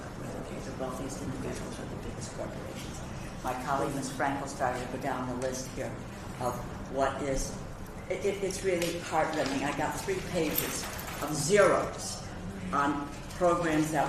whether they're the wealthiest individuals or the biggest corporations. My colleague, Ms. Frankel, started to go down the list here of what is, it's really heartrending. I got 3 pages of zeros on programs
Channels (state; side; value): identical; both; correlation 1.00